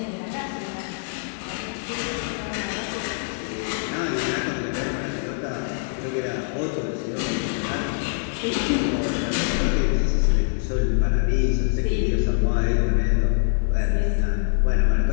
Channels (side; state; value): right; silent; digital silence